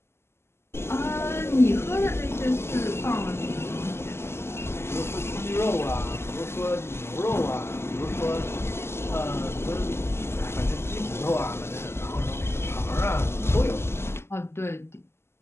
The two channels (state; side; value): late; right; 0.12 ms